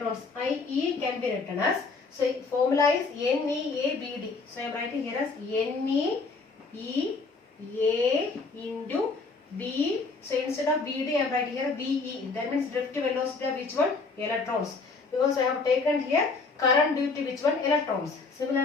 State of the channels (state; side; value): quieter; right; 4.1 dB